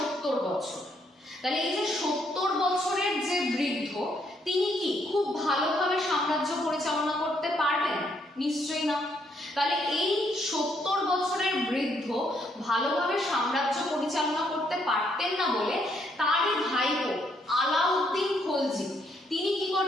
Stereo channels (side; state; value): both; normal; correlation 0.72